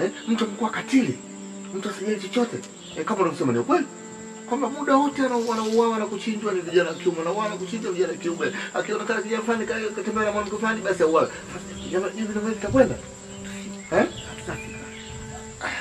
Mtu amekuwa katili. Mtu asijali chochote. Kama unasema ni kweli. Kwamba muda wote wanauawa na kuchinjwa ni vijana kiume na wana kuchinjwa vijana kiume. Akionekana kijana fulani katembea na mwanamke fulani basi auawe. Jamaa hivi ndio tutakwenda. Tutafika.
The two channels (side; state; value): both; identical; correlation 1.00